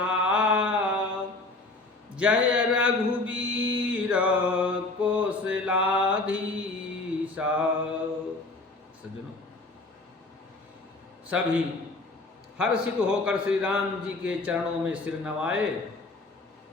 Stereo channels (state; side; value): quieter; right; 3.2 dB